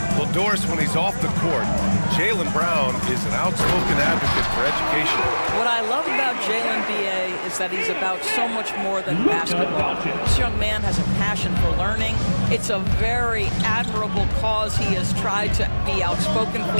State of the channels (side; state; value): both; inverted; correlation -1.00